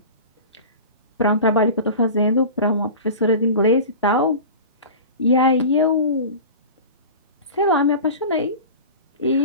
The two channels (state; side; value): inverted; both; correlation -0.34